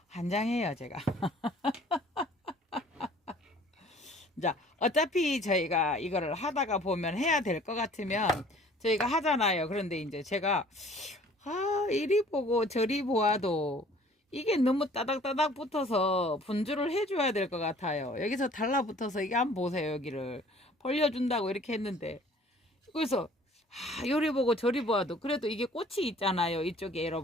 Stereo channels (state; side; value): normal; both; correlation 0.53